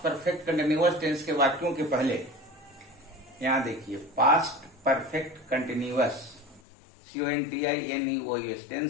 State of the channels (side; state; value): right; drops out; at 6.6 s